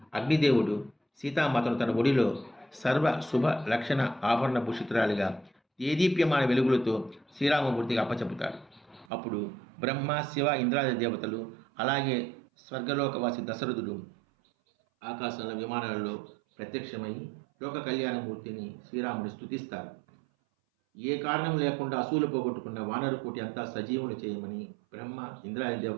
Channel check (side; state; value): left; drops out; at 9.1 s